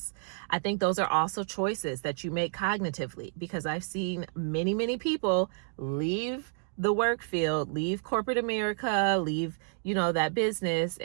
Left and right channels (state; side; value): silent; left; digital silence